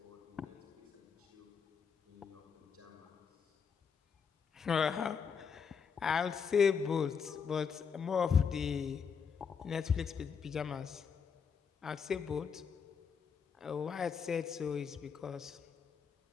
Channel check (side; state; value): right; quieter; 6.5 dB